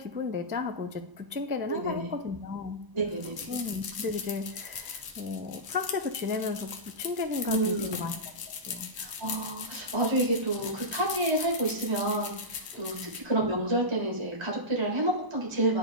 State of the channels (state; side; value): late; left; 1.0 ms